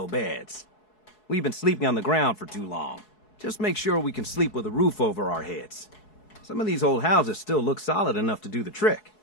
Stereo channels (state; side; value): late; right; 4.7 ms